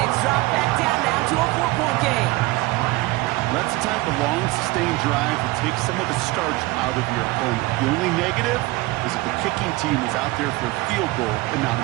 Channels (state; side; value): quieter; left; 20.8 dB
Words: it's dropped back down now to a 4-point game. That's the type of long, sustained drive that takes some of the starch out of your opponent. The only negative is that the kicking team is out there for a field goal and not